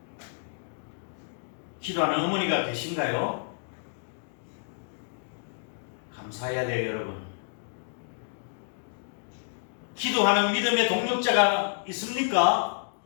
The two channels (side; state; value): right; silent; digital silence